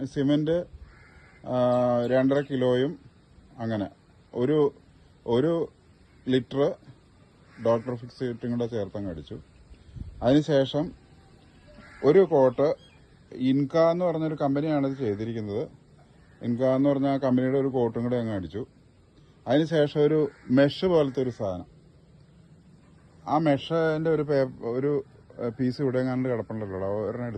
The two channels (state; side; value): identical; both; correlation 1.00